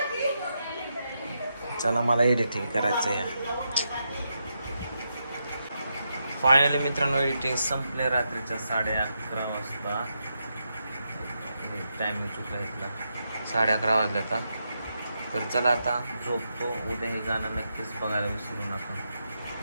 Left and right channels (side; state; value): both; inverted; correlation -0.84